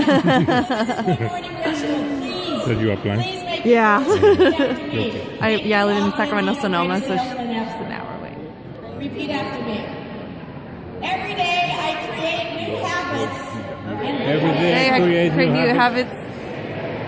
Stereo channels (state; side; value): identical; both; correlation 1.00